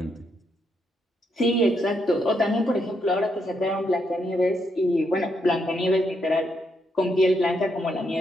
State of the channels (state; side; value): normal; both; correlation 0.78